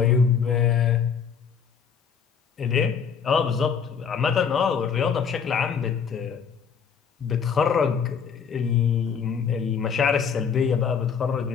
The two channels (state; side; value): quieter; right; 6.7 dB